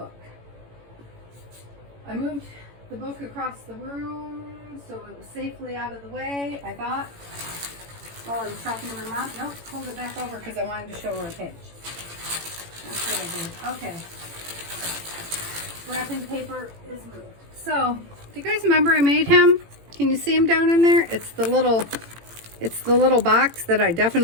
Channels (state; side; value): late; left; 18 ms